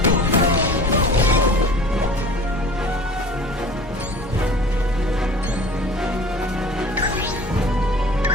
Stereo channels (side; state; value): both; normal; correlation 0.43